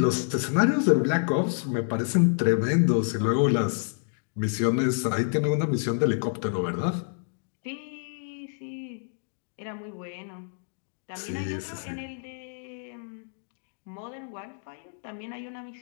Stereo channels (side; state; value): right; silent; digital silence